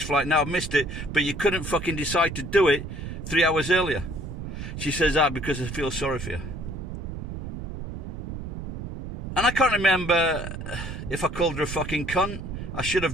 flight, now I've missed it. But you couldn't fucking decide to do it 3 hours earlier. She says, because I feel sorry for you. And I can't remember if I called her a fucking cunt. I should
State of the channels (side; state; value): right; noise; rumble, 8 dB below the sound